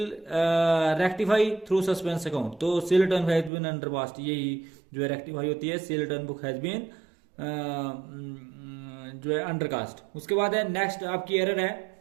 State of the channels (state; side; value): drops out; left; at 3.5 s